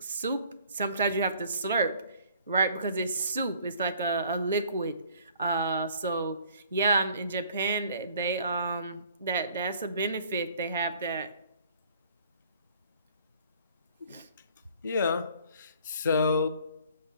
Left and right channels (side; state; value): both; inverted; correlation -0.55